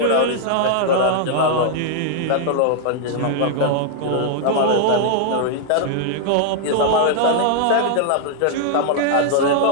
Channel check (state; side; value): different; both; correlation -0.01